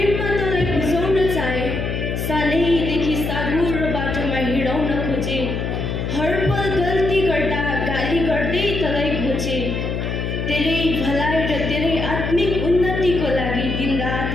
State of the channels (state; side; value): noise; left; hum, 2 dB below the sound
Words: तँलाई बुझाउन चाहे। सानैदेखि सागुर बाटोमा हिँडाउन खोजे, हर पल गल्ती गर्दा गाली गर्दै तँलाई घोचे। तेरै भलाइ र तेरै आत्मिक उन्नतिको लागि दिनरात